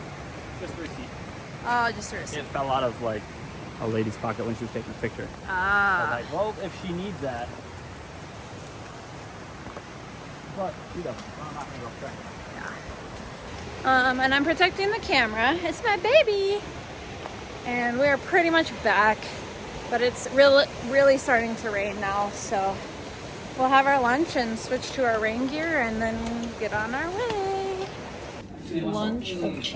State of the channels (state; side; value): identical; both; correlation 1.00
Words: Just a receipt. Oh, just a receipt. It fell out of like a lady's pocket when she was taking a picture. Ah. I was like, well, if she needs that. But, you know, I'm not gonna go check it. And I'm protecting the camera. It's my baby. And we're pretty much back, but it's really starting to rain now, so we'll have our lunch and switch to our rain gear and then get on our way. Lunch of